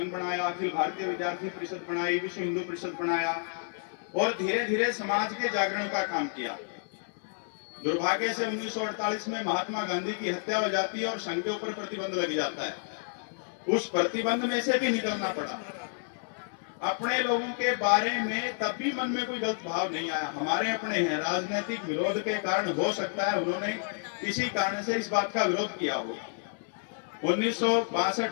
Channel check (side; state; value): right; silent; 57 dB below the other